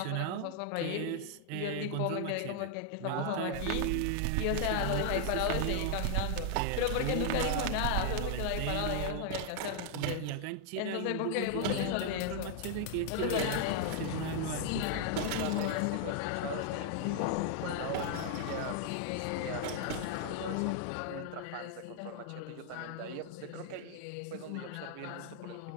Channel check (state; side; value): different; both; correlation 0.00